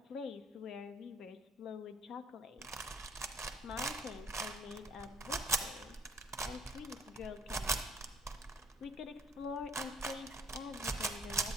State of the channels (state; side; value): normal; both; correlation 0.60